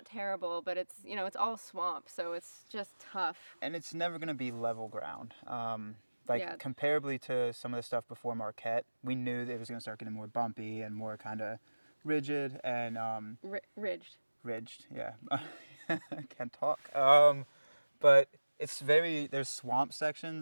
terrible, but it's, you know, it's all swamp, so it's just tough. and it's never going to be level ground. Yeah. Comparably to some of the stuff before Marquette, we knew that it was going to start getting more bumpy and more kind of rigid and Ridged. ridged. Yeah, can't talk. But it's there's swamp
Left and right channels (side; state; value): both; inverted; correlation -1.00